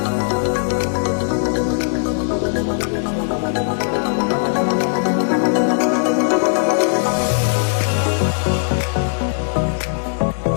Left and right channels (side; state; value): right; silent; digital silence